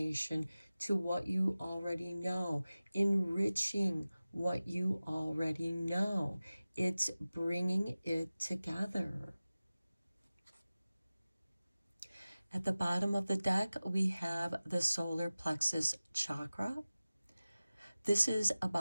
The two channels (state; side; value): inverted; both; correlation -0.97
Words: to what you already know, enriching what you already know. It's bringing it together. At the bottom of the deck, we have the solar plexus chakra. This is